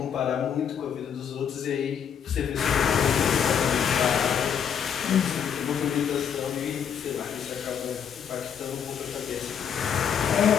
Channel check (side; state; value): right; quieter; 7.9 dB